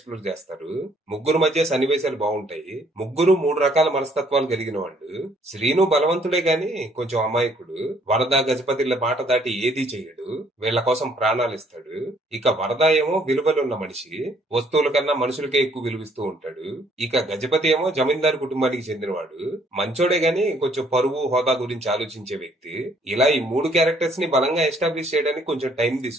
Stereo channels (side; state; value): both; normal; correlation 0.64